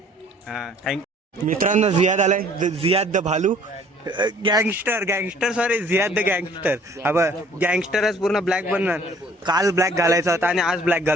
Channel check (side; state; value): both; normal; correlation 0.55